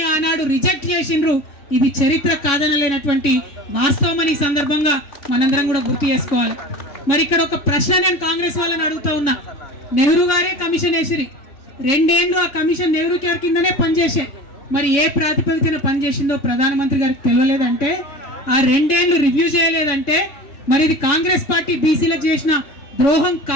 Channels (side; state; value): right; late; 3.6 ms